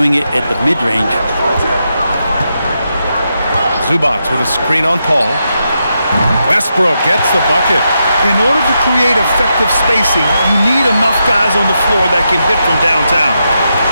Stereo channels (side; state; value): both; inverted; correlation -0.84